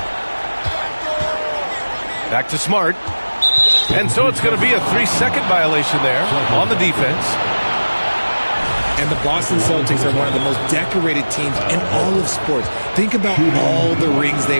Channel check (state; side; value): inverted; both; correlation -1.00